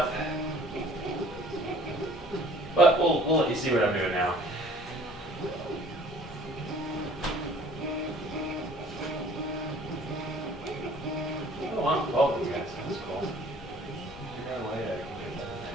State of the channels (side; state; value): both; normal; correlation 0.53